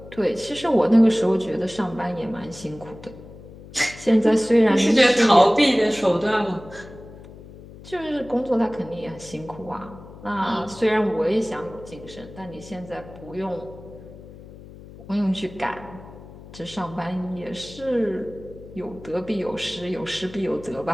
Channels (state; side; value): noise; left; hum, 17 dB below the sound